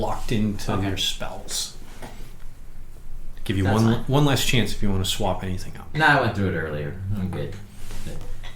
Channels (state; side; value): identical; both; correlation 1.00